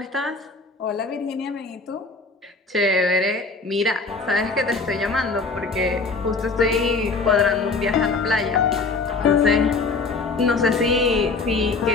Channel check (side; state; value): right; quieter; 4.0 dB